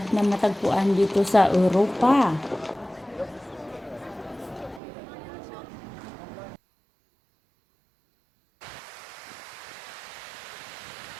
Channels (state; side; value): drops out; left; at 4.8 s